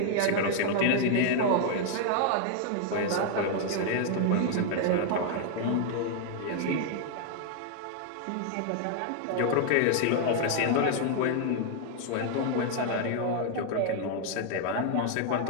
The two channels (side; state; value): both; different; correlation 0.00